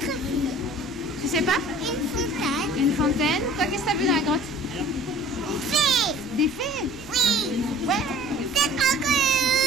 Tu sais pas? Une fontaine. Une fontaine. Toi, qu'est-ce que t'as vu dans la grotte? Des fées. Des fées? Oui. Ouais. C'est trop cool.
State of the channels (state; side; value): noise; right; rumble, 20 dB below the sound